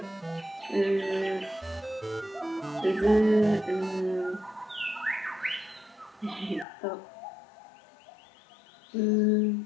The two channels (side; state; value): right; drops out; at 6.7 s